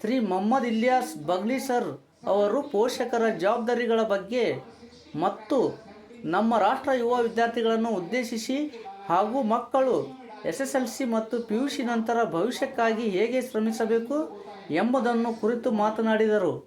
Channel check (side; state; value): both; identical; correlation 1.00